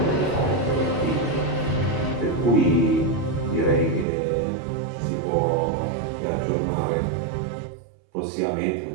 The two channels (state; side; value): drops out; left; at 4.0 s